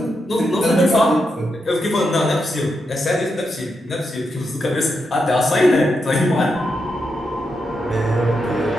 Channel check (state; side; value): normal; both; correlation 0.84